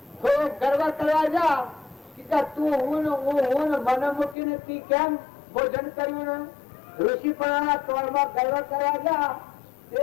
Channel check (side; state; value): right; drops out; at 4.4 s